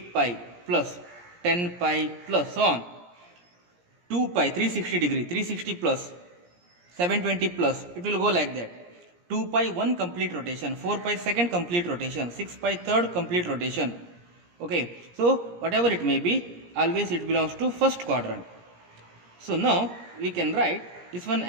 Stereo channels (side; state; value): left; late; 17 ms